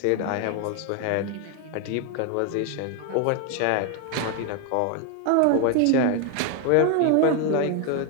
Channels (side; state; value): both; different; correlation 0.01